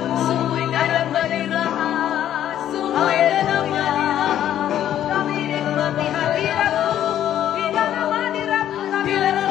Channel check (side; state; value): right; quieter; 11.2 dB